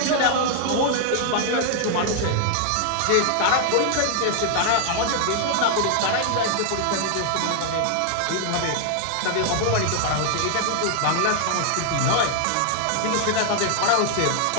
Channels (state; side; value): different; both; correlation 0.00